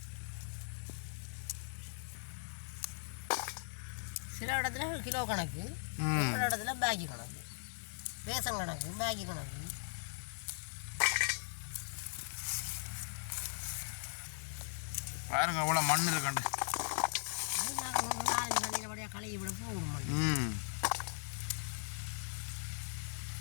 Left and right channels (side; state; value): right; silent; digital silence